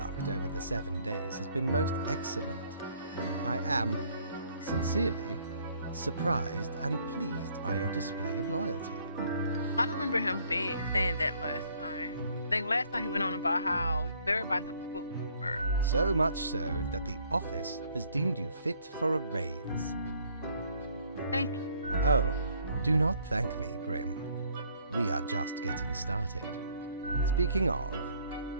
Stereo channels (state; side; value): inverted; both; correlation -0.63